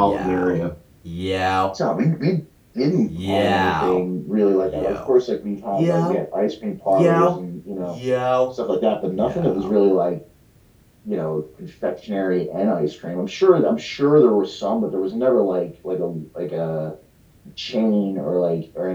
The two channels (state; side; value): identical; both; correlation 1.00